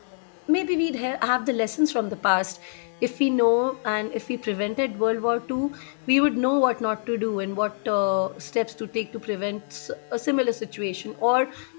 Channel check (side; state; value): right; silent; 62 dB below the other